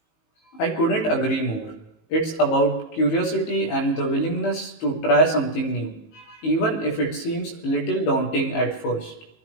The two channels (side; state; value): right; late; 19 ms